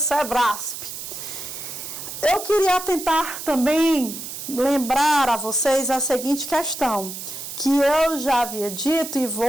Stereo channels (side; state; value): right; noise; hiss, 9 dB below the sound